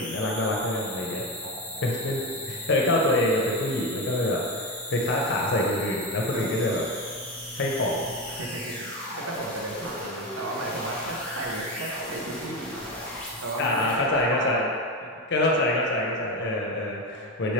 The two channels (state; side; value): normal; both; correlation 0.17